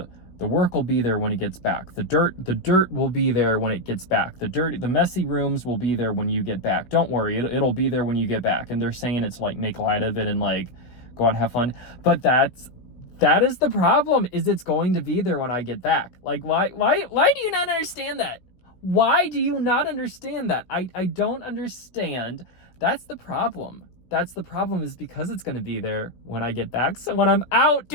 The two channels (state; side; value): late; right; 16 ms